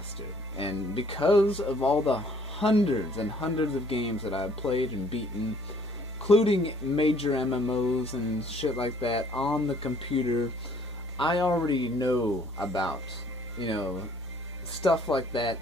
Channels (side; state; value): both; normal; correlation 0.60